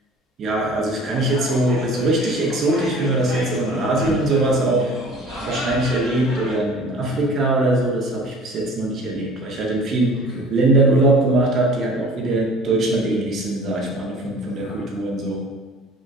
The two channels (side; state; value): both; normal; correlation 0.46